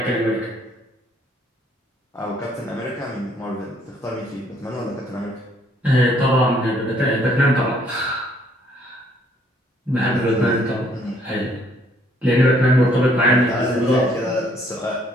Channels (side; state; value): both; normal; correlation 0.64